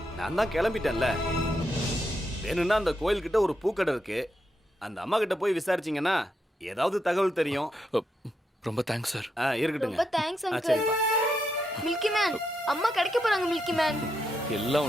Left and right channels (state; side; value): normal; both; correlation 0.82